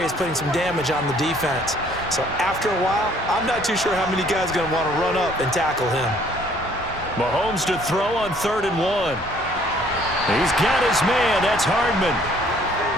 is putting some damage on the defense. So after a while, I'm not too sure how many guys are going to want to run up and tackle him. Mahomes to throw on 3rd and 1. He's got his man. That's Hardman.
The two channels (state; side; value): normal; both; correlation 0.60